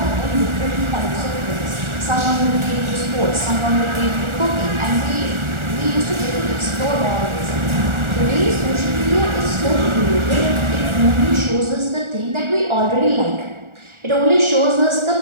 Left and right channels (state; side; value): late; left; 1.4 ms